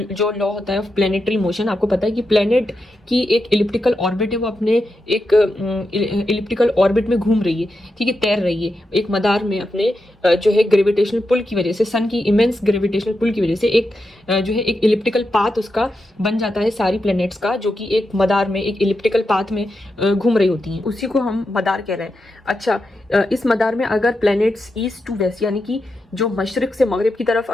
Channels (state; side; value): normal; both; correlation 0.87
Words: लॉ होता है ऑफ प्लेनेटरी मोशन। आपको पता है कि प्लेनेट की एक इलिप्टिकल ऑर्बिट है, वो अपने एक इलिप्टिकल ऑर्बिट में घूम रही है, ठीक है, तैर रही है एक मदार में अपने जो है ग्रेविटेशनल पुल की वजह से, सन की इमेंस ग्रेविटेशनल पुल की वजह से एक जो है एक इलिप्टिकल पाथ उसका बन जाता है सारी प्लैनेट्स का, जो कि एक मदार में एक इलिप्टिकल पाथ में घूम रही होती हैं। उसी को हम मदार कह रहे हैं। अच्छा, इस मदार में अगर प्लैनेट्स ईस्ट टू वेस्ट यानी कि जो मशरिक से मगरिब की तरफ